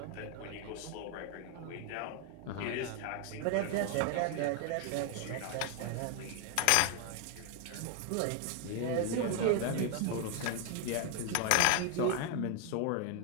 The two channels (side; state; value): both; different; correlation 0.01